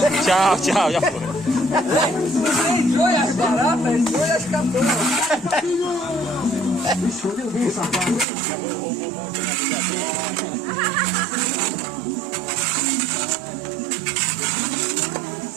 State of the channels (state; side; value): drops out; left; at 8.2 s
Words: Tchau, tchau, já foi. Você entrou e as baratas, entrou e as catonas.